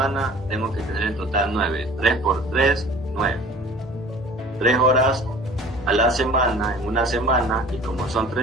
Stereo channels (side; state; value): both; normal; correlation 0.46